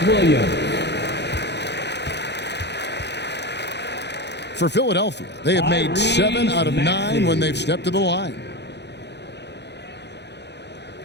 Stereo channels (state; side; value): late; right; 0.50 ms